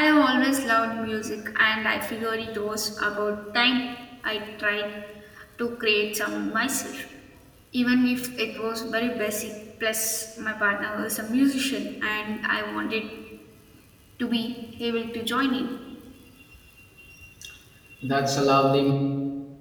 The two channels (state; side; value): identical; both; correlation 1.00